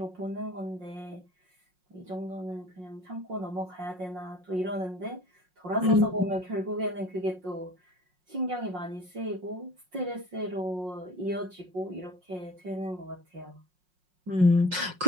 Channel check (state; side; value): late; left; 5.5 ms